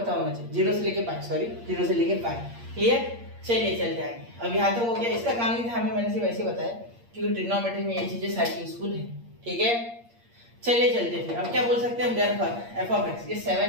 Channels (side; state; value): left; late; 8.6 ms